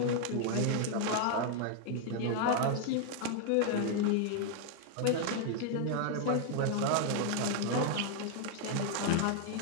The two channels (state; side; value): different; both; correlation 0.00